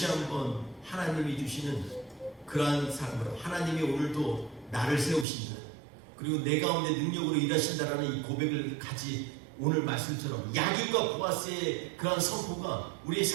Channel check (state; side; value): drops out; left; at 5.2 s